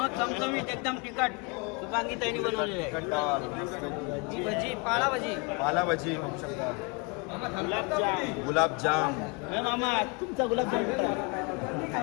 चमचमीत एकदम तिखट शुभांगी ताईने बनवलेली आहे. तिखट डाळ, ही भजी पाळा भजी. पाला भजी बघू शकता. गुलाबजाम हे मामा तुमचा गुलाबजाम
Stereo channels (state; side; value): quieter; right; 30.6 dB